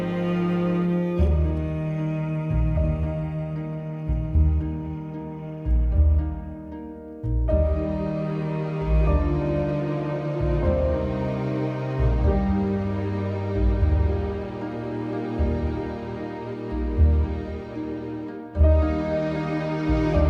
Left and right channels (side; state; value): both; identical; correlation 1.00